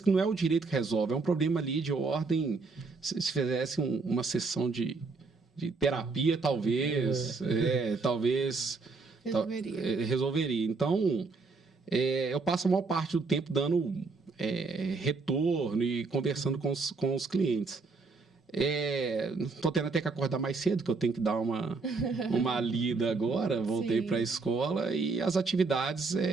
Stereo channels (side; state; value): left; quieter; 4.2 dB